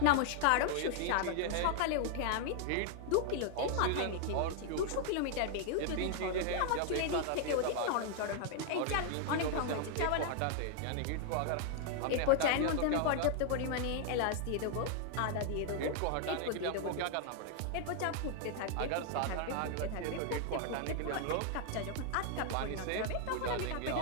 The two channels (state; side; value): different; both; correlation 0.00